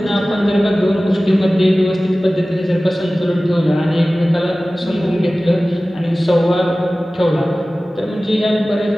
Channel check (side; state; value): both; normal; correlation 0.97